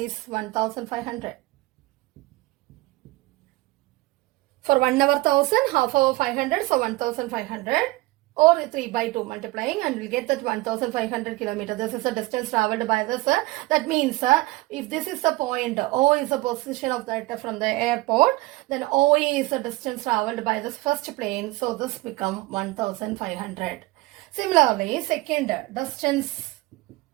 1500. For 1 hour 1000, half hour 500, so 1500 or 3/2 multiplying and we get that 1500 kilometers. This is the distance traveled by this. That means if this is the point, O is the position of that from the airport, then OE is the distance traveled by this first plane. So this become 1500. Similarly, second distance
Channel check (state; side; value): quieter; left; 21.0 dB